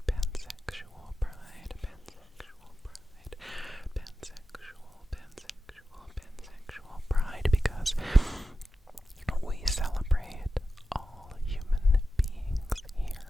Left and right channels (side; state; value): both; normal; correlation 0.92